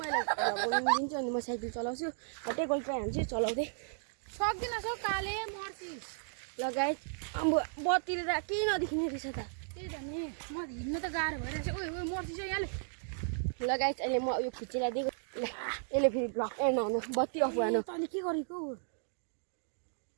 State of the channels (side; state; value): left; silent; digital silence